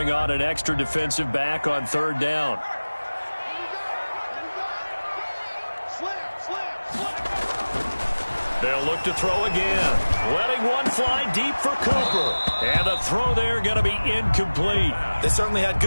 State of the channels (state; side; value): inverted; both; correlation -1.00